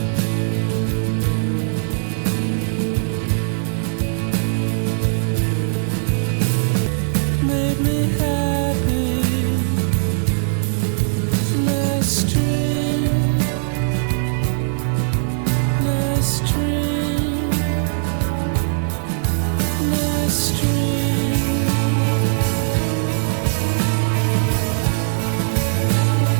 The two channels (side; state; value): left; silent; digital silence